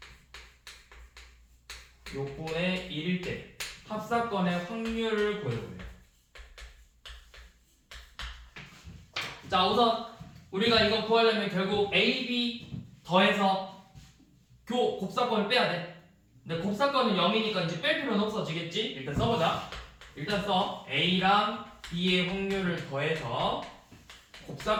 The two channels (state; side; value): identical; both; correlation 1.00